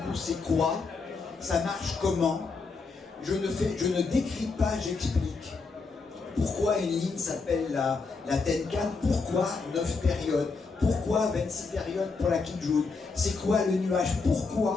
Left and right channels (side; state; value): right; quieter; 4.3 dB